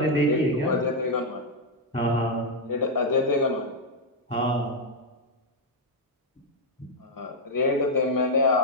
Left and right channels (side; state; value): both; normal; correlation -0.01